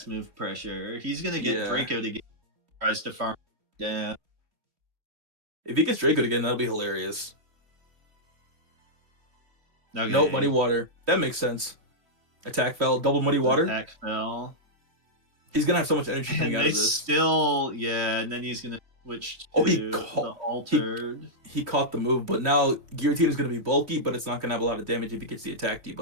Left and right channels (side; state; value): left; late; 2.9 ms